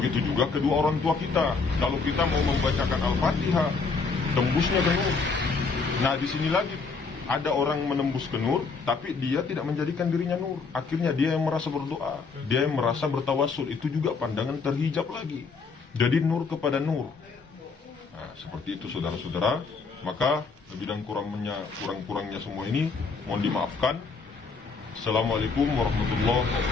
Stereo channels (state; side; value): quieter; right; 4.7 dB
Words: juga kedua orang tua kita. Kalau kita mau membacakan Al-Fatihah, tembusnya ke nur. Nah, di sini lagi ada orang menembus ke nur, tapi dia tidak menjadikan dirinya nur. Akhirnya dia yang merasa berdoa, dia yang merasa bertawasul. Itu juga pandangan terhijab lagi. Jadi nur kepada nur. Nah, seperti itu saudara-saudara. Maka lebih dan kurang-kurangnya semua ini mohon dimaafkan. Assalamualaikum warahmatullahi